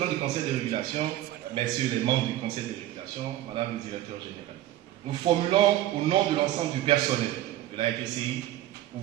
du Conseil de régulation, messieurs les membres du Conseil de régulation, Madame le Directeur général, nous formulons au nom de l'ensemble du personnel de la RDCI, pour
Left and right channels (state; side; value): quieter; left; 14.4 dB